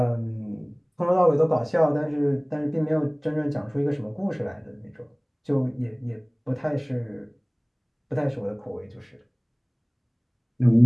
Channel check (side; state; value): both; identical; correlation 1.00